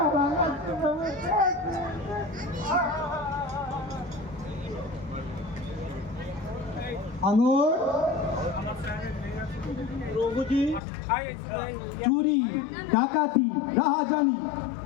লাগাচ্ছে প্রভু আঙুর প্রভুজি চুরি ডাকাতি রাহাজানি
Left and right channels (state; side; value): drops out; right; at 10.8 s